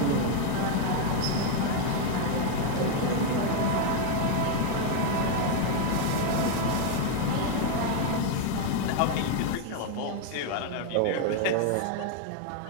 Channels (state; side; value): different; both; correlation 0.01